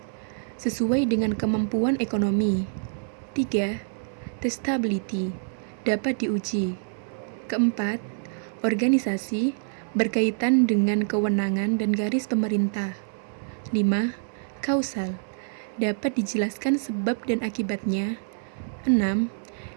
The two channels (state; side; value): silent; left; digital silence